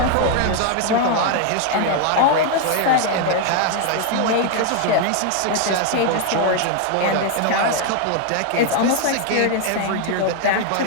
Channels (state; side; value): different; both; correlation 0.01